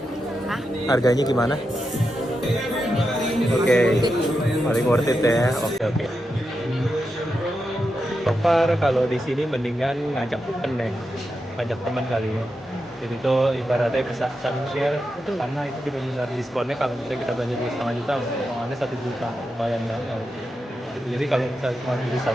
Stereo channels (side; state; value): both; normal; correlation 0.87